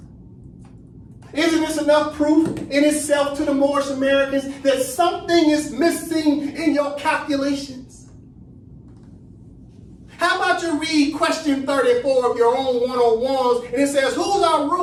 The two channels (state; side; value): identical; both; correlation 1.00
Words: Isn't this enough proof in itself to the Moorish Americans that something is missing in your calculations? How about you read question 34 of your own 101s, and it says, who's our